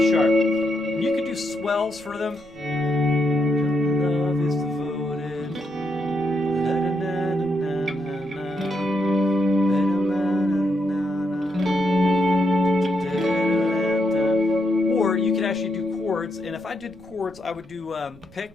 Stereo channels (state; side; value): noise; right; rumble, 25 dB below the sound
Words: sharp. You could do swells for them. Love is devoted. Or you could actually do chords, and if I did chords, I would do